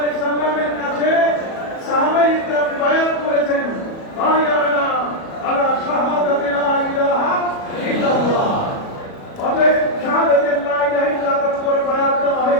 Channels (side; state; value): right; late; 37 ms